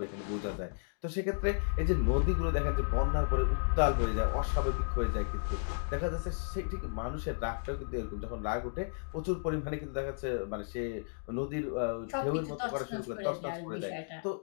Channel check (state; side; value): silent; right; digital silence